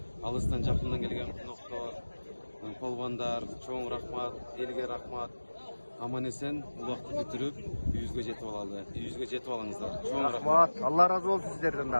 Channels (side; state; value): both; inverted; correlation -1.00